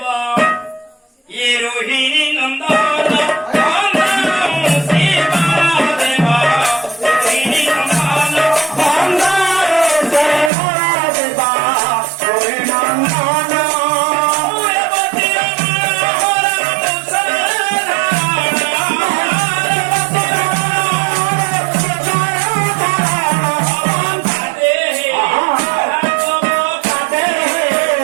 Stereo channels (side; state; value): left; drops out; at 10.5 s